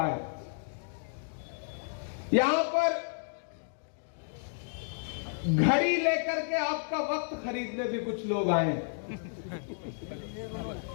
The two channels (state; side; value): silent; right; digital silence